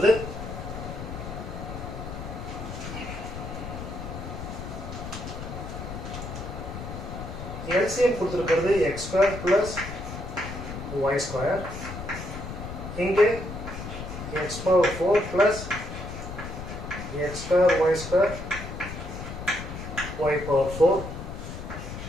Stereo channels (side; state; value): left; noise; rumble, 8 dB below the sound